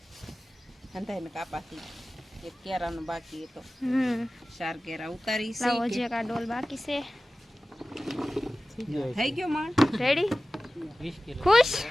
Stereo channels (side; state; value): both; normal; correlation 0.96